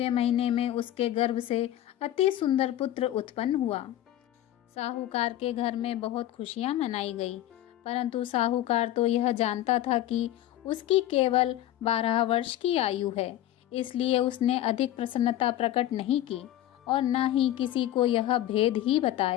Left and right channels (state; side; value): quieter; right; 13.3 dB